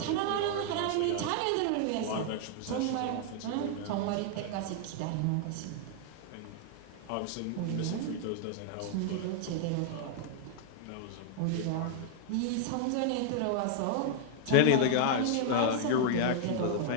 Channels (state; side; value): different; both; correlation 0.00